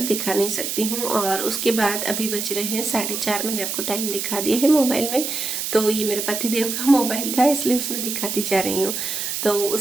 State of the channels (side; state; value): right; noise; hiss, 3 dB below the sound